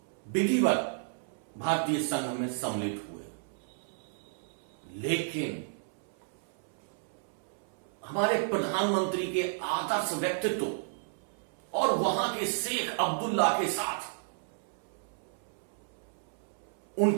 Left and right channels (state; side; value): silent; left; 56 dB below the other